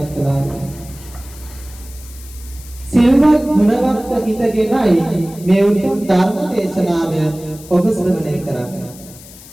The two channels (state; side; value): noise; left; hiss, 19 dB below the sound